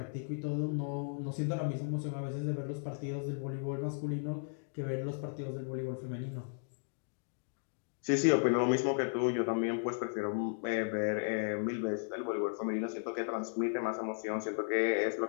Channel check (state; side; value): silent; right; digital silence